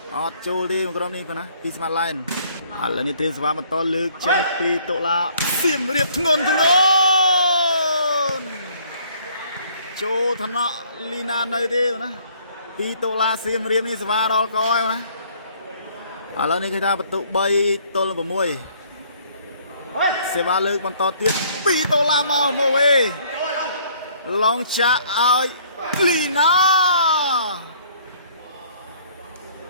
អត់ចូលទេក្រុមនេះណាពីស្មាតឡែនឥឡូវនេះត្រៀមសភាបន្តលើកចេញពីតូឡាសៀមរាបធ្ងន់ចូលឋានៈលីណានៅទេណាពីតូឡាសៀមរាបនេះសភាដល់កហើយណាឥឡូវនេះគេថាបន្ទុក3ទល់6សេវាលើកបន្តទៀត2ដុល្លារមកវិញឡងចាក់ឲ្យលីណា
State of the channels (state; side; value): inverted; both; correlation -0.60